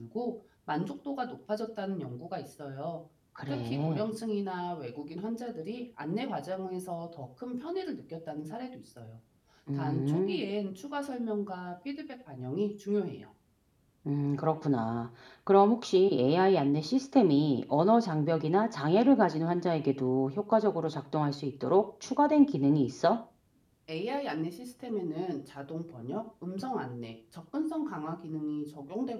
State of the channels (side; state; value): both; identical; correlation 1.00